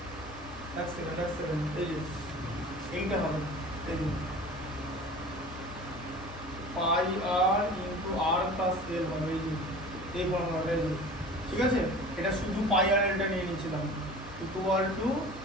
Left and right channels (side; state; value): both; normal; correlation 0.41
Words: সেকেন্ড, এই যে এইটা হবে, এই যে পাই আর ইন্টু আর প্লাস এল হবে, এই যে এই ফর্মুলাটা, এই যে ঠিক আছে। এটা শুধু পাই আর এলটা নিয়ে নিয়েছিলাম, equal to